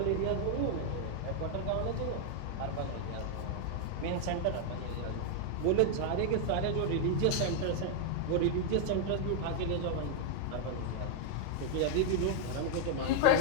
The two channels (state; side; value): different; both; correlation 0.00